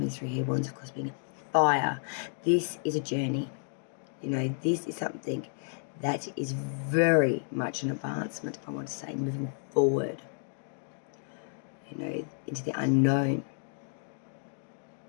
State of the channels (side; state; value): right; silent; digital silence